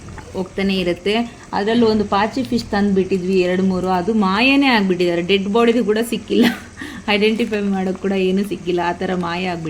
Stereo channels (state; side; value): identical; both; correlation 1.00